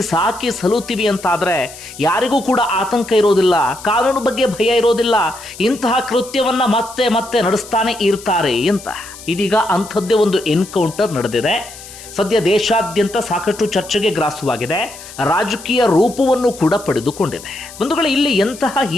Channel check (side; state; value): left; noise; hiss, 16 dB below the sound